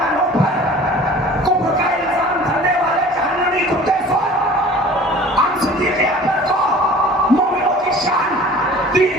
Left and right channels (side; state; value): both; normal; correlation 0.45